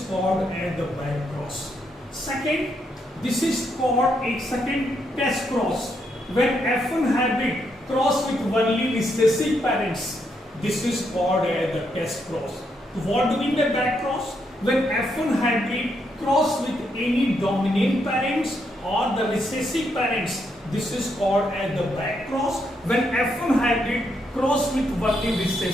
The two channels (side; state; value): both; normal; correlation 0.78